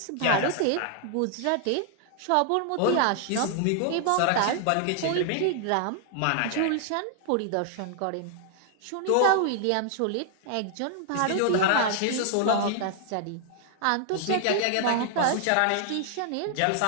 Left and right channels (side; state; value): both; different; correlation 0.00